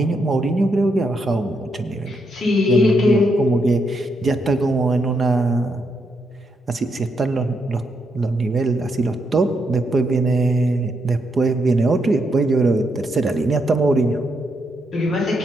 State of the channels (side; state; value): both; normal; correlation 0.79